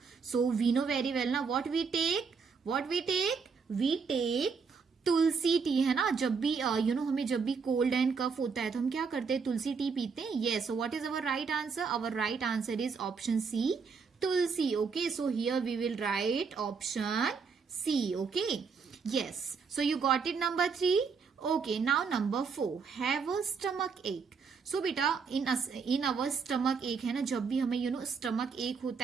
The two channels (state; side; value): quieter; left; 5.4 dB